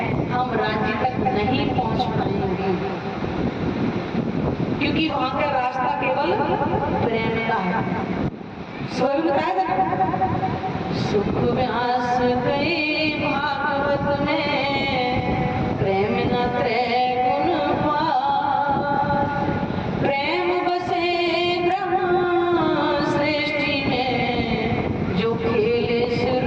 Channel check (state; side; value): identical; both; correlation 1.00